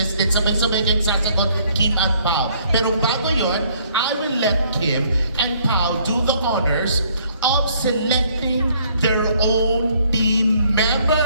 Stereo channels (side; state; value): both; inverted; correlation -0.64